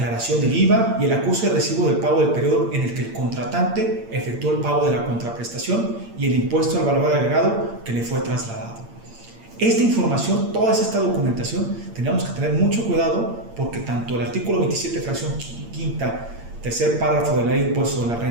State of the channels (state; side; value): late; left; 8.7 ms